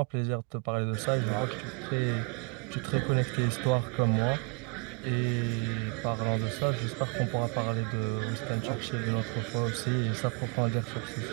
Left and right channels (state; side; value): quieter; left; 37.7 dB